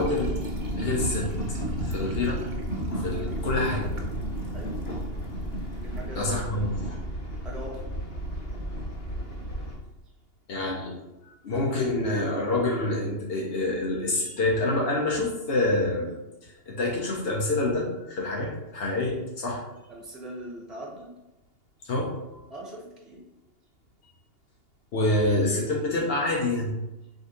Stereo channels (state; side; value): late; right; 2.8 ms